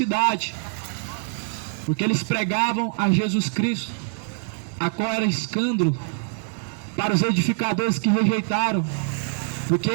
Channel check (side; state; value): left; silent; 60 dB below the other